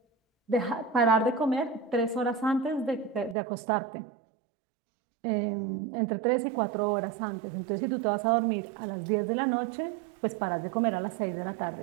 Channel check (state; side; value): drops out; left; at 3.4 s